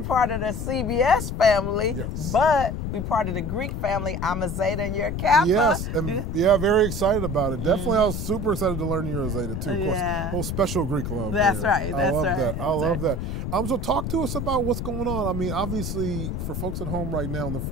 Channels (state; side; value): noise; left; rumble, 3 dB below the sound